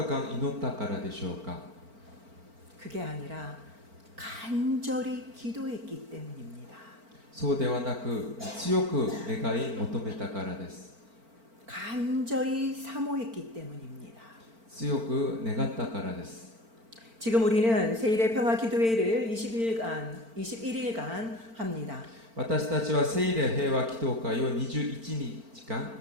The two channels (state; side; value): late; left; 4.4 ms